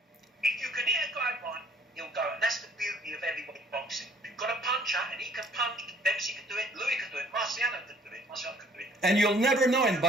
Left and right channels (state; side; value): normal; both; correlation 0.57